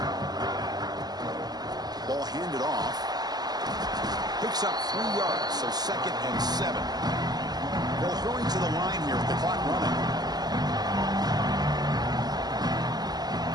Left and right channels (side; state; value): left; late; 0.20 ms